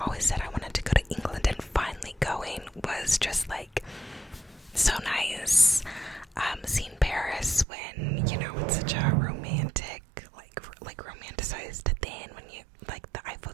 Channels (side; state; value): left; drops out; at 7.7 s